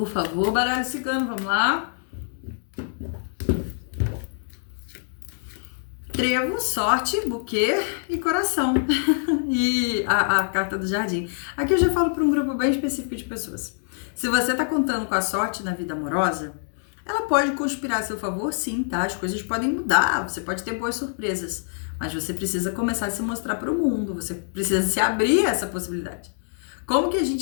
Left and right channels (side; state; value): right; silent; digital silence